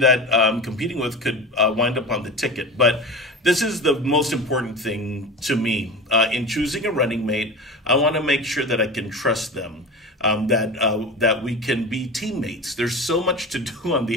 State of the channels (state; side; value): normal; both; correlation 0.30